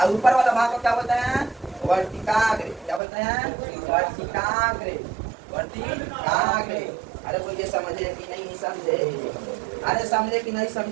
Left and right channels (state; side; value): drops out; left; at 3.0 s